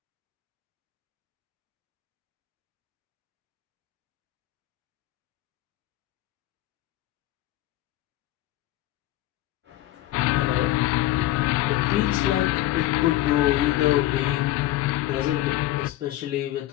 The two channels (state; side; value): quieter; right; 15.2 dB